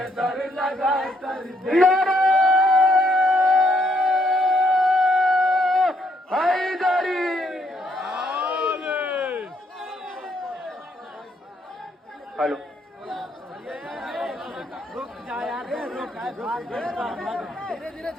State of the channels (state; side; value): normal; both; correlation 0.72